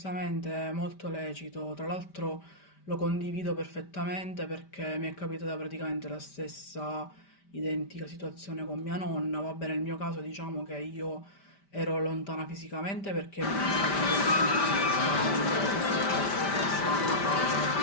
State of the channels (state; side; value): late; right; 5.1 ms